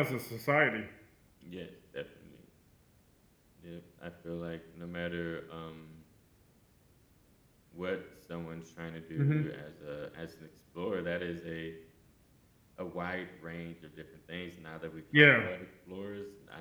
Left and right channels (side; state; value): both; identical; correlation 1.00